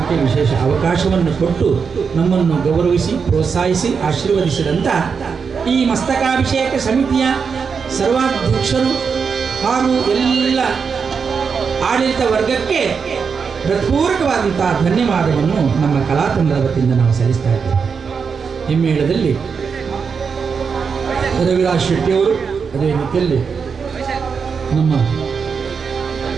ವಿಶೇಷ ಅವಕಾಶವನ್ನು ಕೊಟ್ಟು ನಮ್ಮನ್ನು ಗೌರವಿಸಿ ಪ್ರೋತ್ಸಾಹಿಸಿ ಆಶೀರ್ವದಿಸಿದಂಥ ಈ ಮಸ್ತಕಾಭಿಷೇಕ ಸಮಿತಿಯ ಸರ್ವಾಧ್ಯಕ್ಷರು ಹಾಗೂ ಎಲ್ಲ ಆಡಳಿತ ವರ್ಗಕ್ಕೆ ಹೃತ್ಪೂರ್ವಕವಾದಂಥ ಧನ್ಯವಾದವನ್ನು ನಮ್ಮ ಕಲಾತಂಡದ ವತಿಯಿಂದ ನಾವು ಸಲ್ಲಿಸ್ತಾ ಇದ್ದೇವೆ. ಹಿಮ್ಮೇಳದಲ್ಲಿ ರವಿರಾಜ್ ಶೆಟ್ಟಿಯವರು, ಅದೇ ರೀತಿಯಲ್ಲಿ ನಮ್ಮ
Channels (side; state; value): left; quieter; 5.9 dB